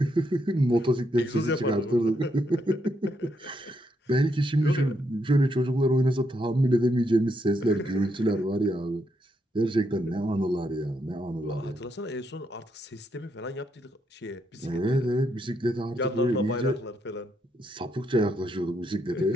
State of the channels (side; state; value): both; normal; correlation 0.78